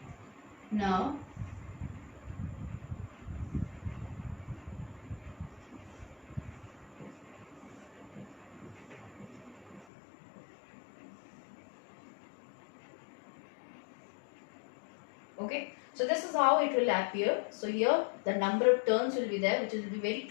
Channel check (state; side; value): drops out; right; at 9.9 s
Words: Now, okay, so this is how it will appear. So here the number of turns will be there, which will be very